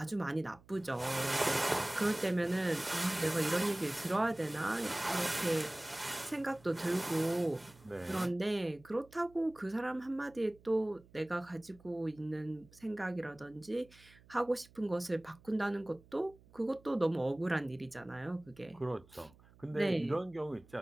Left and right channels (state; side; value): noise; right; hum, 26 dB below the sound